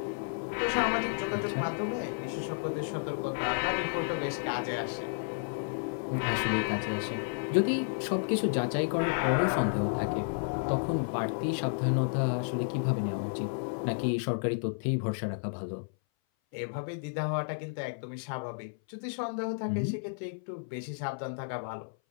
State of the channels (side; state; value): right; silent; 57 dB below the other